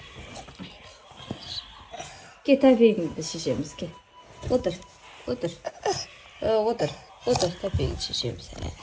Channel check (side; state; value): both; identical; correlation 1.00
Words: Git tabii geçeceğimiz ki. Otur. Tabii geçeceğimiz.